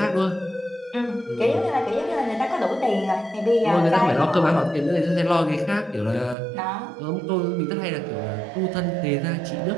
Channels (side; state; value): left; drops out; at 6.4 s